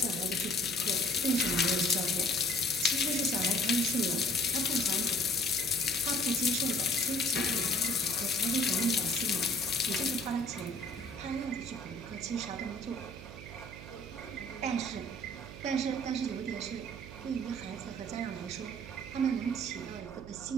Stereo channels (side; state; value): right; noise; hum, 14 dB below the sound